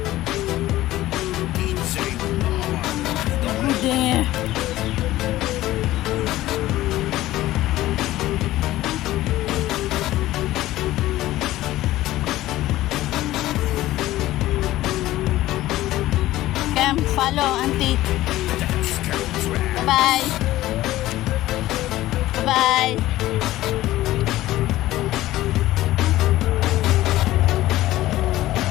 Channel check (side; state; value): right; quieter; 15.8 dB